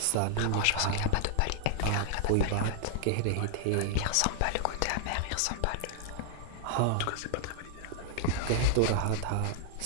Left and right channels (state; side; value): different; both; correlation 0.00